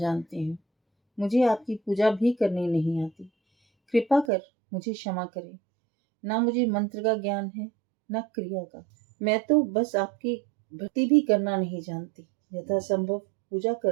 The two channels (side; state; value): left; drops out; at 4.3 s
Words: हूँ। मुझे आपकी पूजा भी करनी नहीं आती। कृपा कर मुझे क्षमा करें। ना मुझे मंत्र का ज्ञान है, न क्रिया का। मैं तो बस आपकी भक्ति भी करना नहीं जानती। यथासंभव पूजा